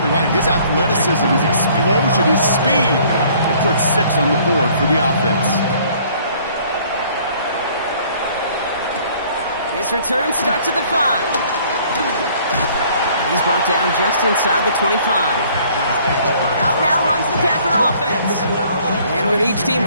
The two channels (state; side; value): inverted; both; correlation -0.58